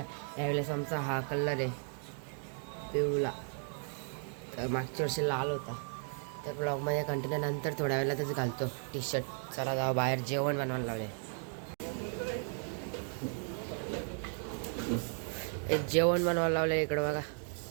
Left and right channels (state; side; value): silent; left; 54 dB below the other